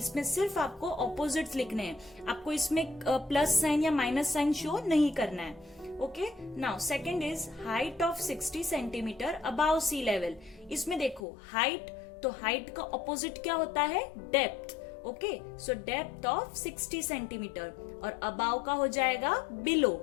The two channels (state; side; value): drops out; right; at 11.2 s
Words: सिर्फ आपको ऑपोजिट्स लिखने हैं, आपको इसमें प्लस साइन या माइनस साइन शो नहीं करना है. Okay, now second is height of 60 centimetre above sea level. इसमें देखो हाइट, तो हाइट का ऑपोजिट क्या होता है? Depth. Okay, so depth of 60 centimetre or above का हो जाएगा बिलो.